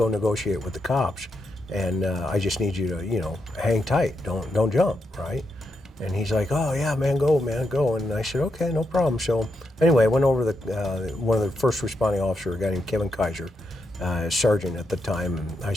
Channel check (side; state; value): both; normal; correlation 0.83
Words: negotiate with the cops, and I just need you to, hang tight, don't jump, right?" And he's like, "Oh yeah, man, go." And I said, "Okay, no problem." So anyway, I went over one of the first responding officers, a guy named Kevin Kaiser, sergeant at the time, and I